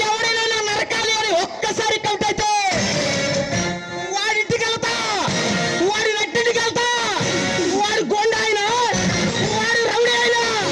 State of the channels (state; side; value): identical; both; correlation 1.00